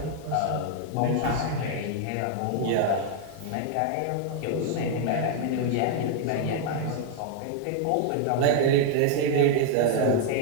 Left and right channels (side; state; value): both; different; correlation -0.01